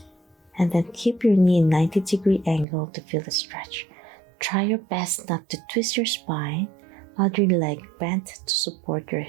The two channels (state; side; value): drops out; left; at 2.7 s